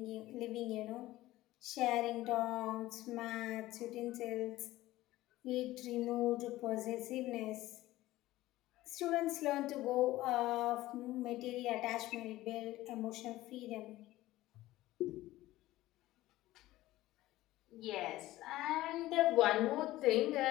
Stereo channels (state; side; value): quieter; right; 16.6 dB